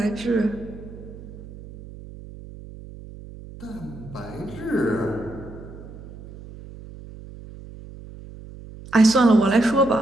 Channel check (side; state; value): right; noise; hum, 16 dB below the sound